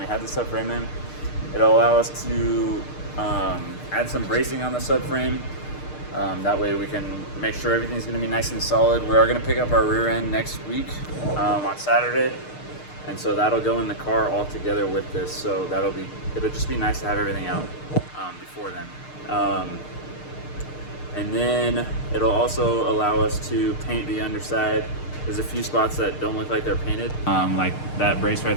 had the subframe in. It'll allow us to add some bracing on the subframe. That way we can make sure everything's gonna be nice and solid. We are gonna pick up our rear end next week on Saturday. And so that'll go in the car all together with this. So it'll just be nice to have everything out before then. And then it'll also allow us to paint the underside. There's a few spots that don't look like they're painted. Like that brace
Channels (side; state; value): right; late; 6.6 ms